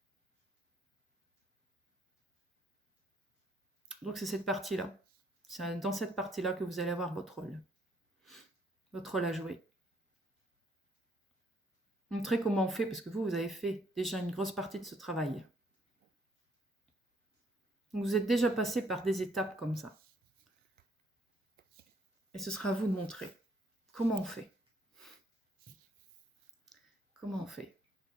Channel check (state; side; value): normal; both; correlation 0.67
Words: Donc c'est cette partie-là. C'est dans cette partie-là que vous allez avoir votre rôle à jouer. Montrez comment on fait, parce que vous avez fait déjà une grosse partie de ce travail. Donc vous êtes déjà passé par des étapes comme ça. Et ce sera à vous de montrer comment on fait. Comment on fait?